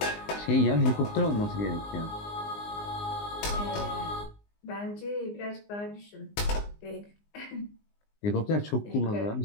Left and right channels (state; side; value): late; right; 19 ms